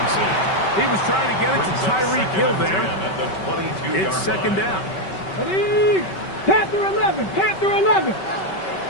He was trying to get it to Tyreek Hill there. It's second down. Ready? Panther 11, Panther 11.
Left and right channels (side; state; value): right; late; 5.3 ms